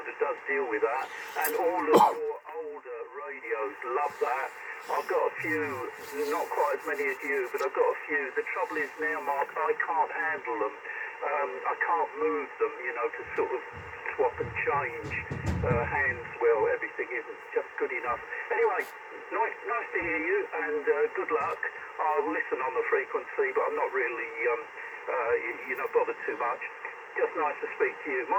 does deal with that, and all of your older radios love that. I've got a few, not quite as many as you, but I've got a few. The trouble is now, Mark, I can't handle them. I can't move them, you know, to sort of swap and change hands. Well, everything isn't just good enough. Anyway, nice to hear you, and good luck. I'll listen on the frequency, but I'm not really, you know, bothered too much. Just nice to speak to you.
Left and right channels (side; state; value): both; identical; correlation 1.00